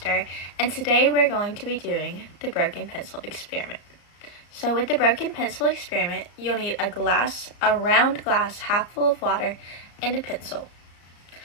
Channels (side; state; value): right; late; 34 ms